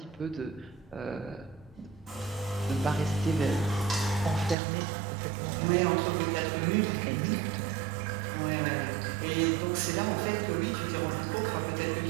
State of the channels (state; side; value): drops out; left; at 4.5 s